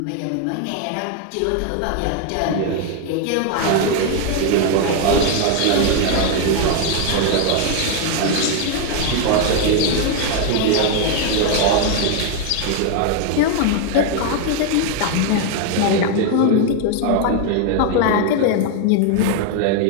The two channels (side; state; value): both; different; correlation 0.01